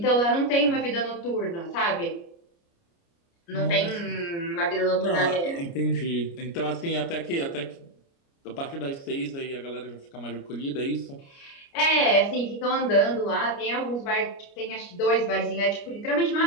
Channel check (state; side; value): late; right; 29 ms